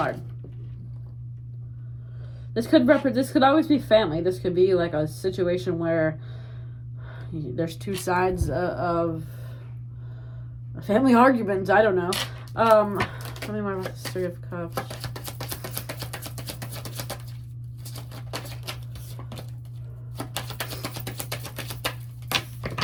This could always be family. This could be like a situation where there's 2 sides of a family argument. I don't know. Tell me more about this Three of Cups.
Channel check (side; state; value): both; identical; correlation 1.00